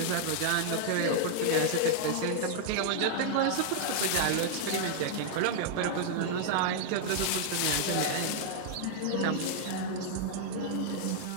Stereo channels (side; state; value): both; different; correlation -0.01